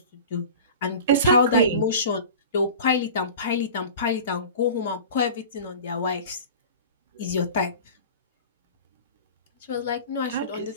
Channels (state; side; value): inverted; both; correlation -0.37